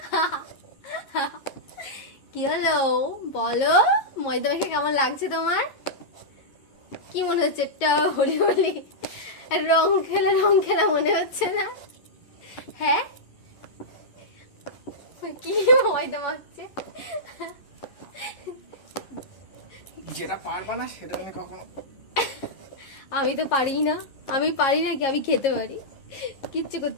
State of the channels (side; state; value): right; late; 11 ms